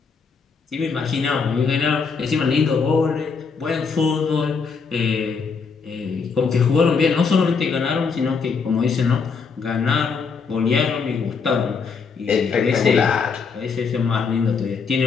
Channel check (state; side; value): quieter; right; 5.4 dB